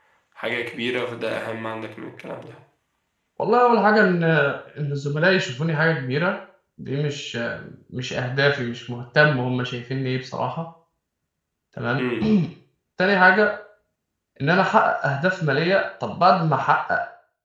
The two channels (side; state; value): both; identical; correlation 1.00